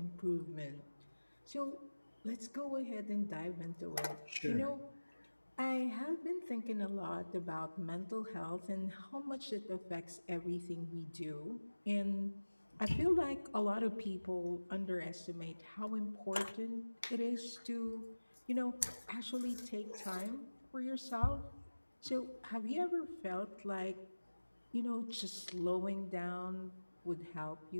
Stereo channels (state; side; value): inverted; both; correlation -1.00